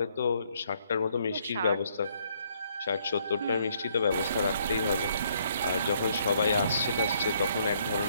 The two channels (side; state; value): both; inverted; correlation -0.68